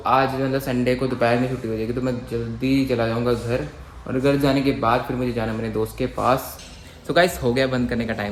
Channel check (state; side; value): identical; both; correlation 1.00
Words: आज मतलब संडे को दोपहर में छुट्टी हो जाएगी तो मैं जल्दी चला जाऊँगा घर और घर जाने के बाद फिर मुझे जाना मेरे दोस्त के पास। सो गाइस हो गया बंद करने का